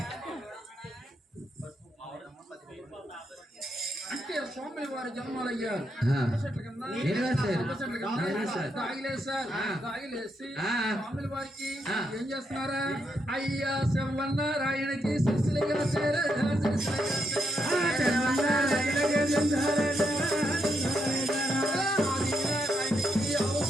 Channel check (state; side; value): normal; both; correlation 0.80